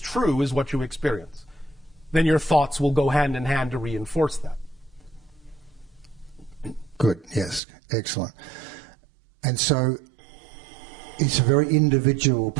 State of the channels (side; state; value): left; drops out; at 7.6 s